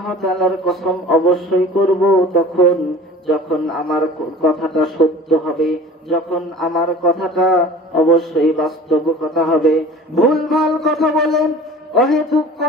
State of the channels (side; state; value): both; normal; correlation 0.42